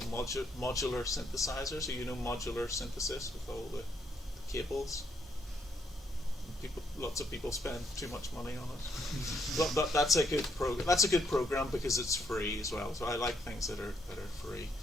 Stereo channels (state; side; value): normal; both; correlation 0.74